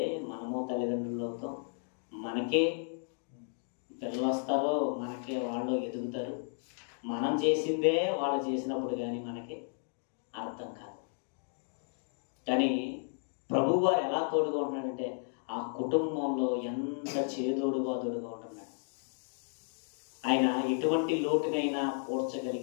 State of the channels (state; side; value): silent; right; 55 dB below the other